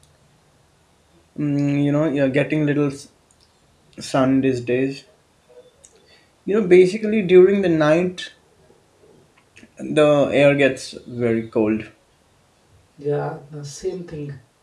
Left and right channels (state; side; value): identical; both; correlation 1.00